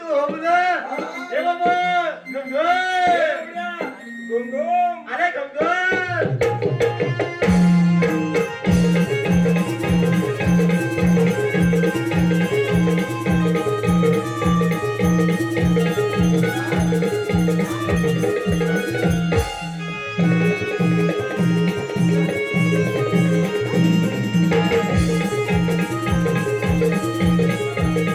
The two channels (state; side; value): identical; both; correlation 1.00